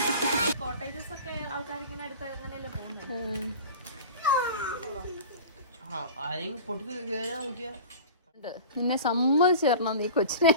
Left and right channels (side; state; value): both; inverted; correlation -0.36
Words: കോട്ടേജസ് ഒക്കെ ആൾക്കാരിങ്ങനെ അടുത്ത് അങ്ങനെയല്ലേ പോകുന്നത്. നിന്നെ സമ്മതിച്ചു തരണം, നീ കൊച്ചിനെ